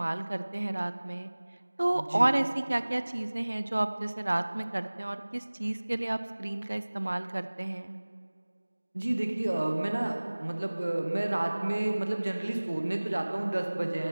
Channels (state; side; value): inverted; both; correlation -1.00